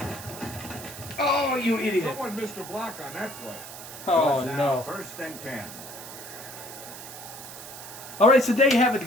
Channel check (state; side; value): noise; right; hiss, 13 dB below the sound